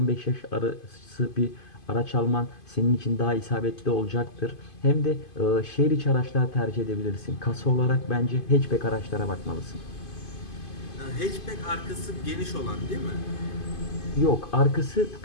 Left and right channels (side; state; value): right; late; 2.5 ms